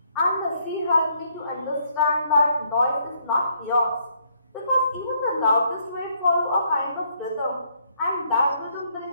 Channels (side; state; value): both; inverted; correlation -0.70